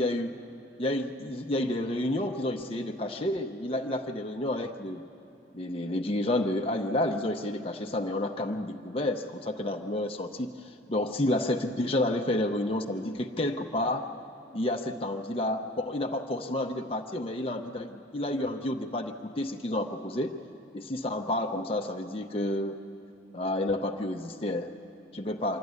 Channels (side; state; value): both; normal; correlation 0.47